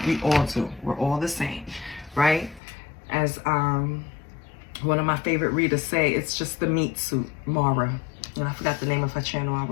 We all do. We're all the same, right? As One of my favorite readers say it's just the meat suit, Mara. And I forgot the name of her channel. I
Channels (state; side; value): drops out; right; at 2.6 s